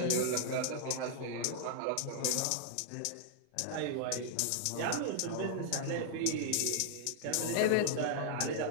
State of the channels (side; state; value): both; different; correlation -0.01